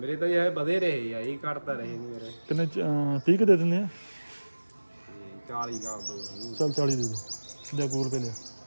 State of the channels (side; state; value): both; inverted; correlation -1.00